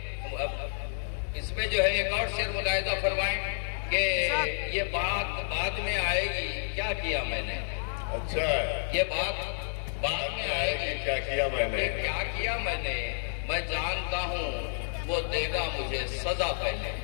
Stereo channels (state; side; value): silent; right; digital silence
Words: इसमें जो है एक और शेर मुलाहिजा फरमाएं कि ये बात बाद में आएगी, क्या किया मैंने। अच्छा। ये बात बाद में आएगी, क्या किया मैंने। क्या किया मैंने। मैं जानता हूँ वो देगा मुझे सजा पहले।